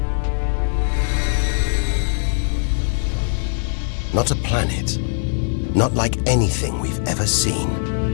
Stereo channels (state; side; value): silent; right; digital silence